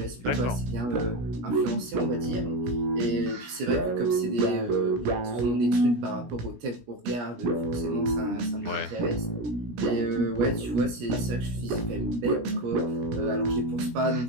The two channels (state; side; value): late; left; 17 ms